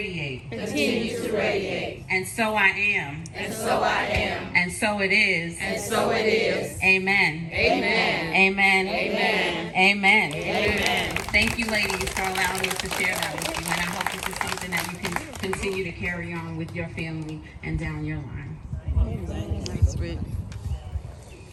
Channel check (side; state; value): both; identical; correlation 1.00